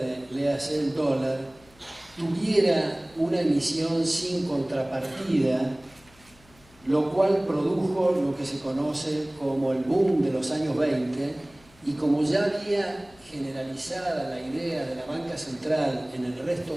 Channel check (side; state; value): left; noise; hum, 28 dB below the sound